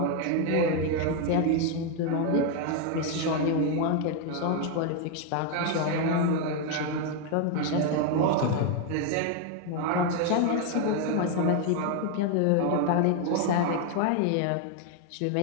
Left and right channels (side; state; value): both; different; correlation 0.01